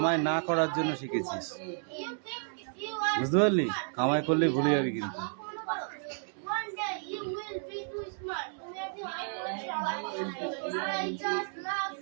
না করার জন্য শিখেছিস, বুঝতে পারলি? কামাই করলে ভুলে যাবি কিন্তু। I just love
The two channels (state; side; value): silent; left; digital silence